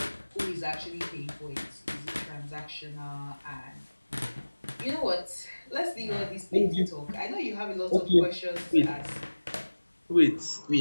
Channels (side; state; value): both; inverted; correlation -1.00